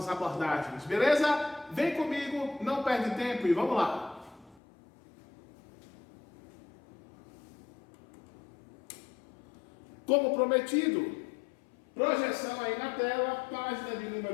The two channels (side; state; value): right; drops out; at 4.6 s